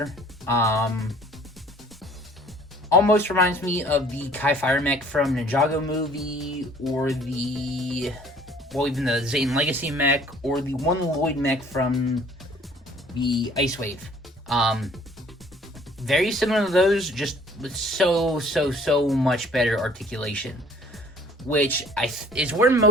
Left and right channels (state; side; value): normal; both; correlation 0.55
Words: Almost reminds me of the Kai Fire mech from Ninjago movie, or even the Zane Legacy mech, or the One Lloyd mech from the Ice Wave. Very similar to those, just with so much better articulation, which is where